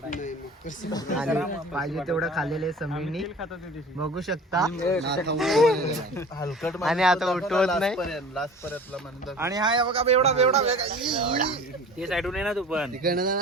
आणि पाहिजे तेवढं खाल्लेले समीनी बघू शकता. हलकट आणि आता उठवत नाही. लास्ट पर्यंतला म्हणतात. आणि हा बघा एवढा ते साईडून आहे ना तू पण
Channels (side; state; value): both; normal; correlation 0.41